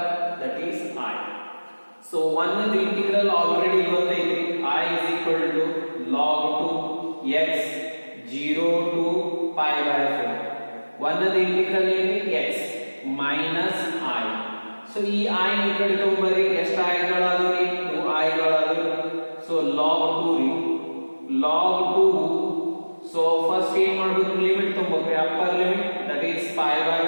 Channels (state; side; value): inverted; both; correlation -1.00